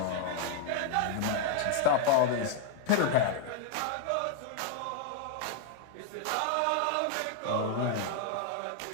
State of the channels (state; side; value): different; both; correlation 0.00